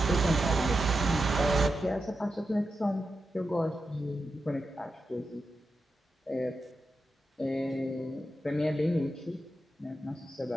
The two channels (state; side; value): normal; both; correlation 0.89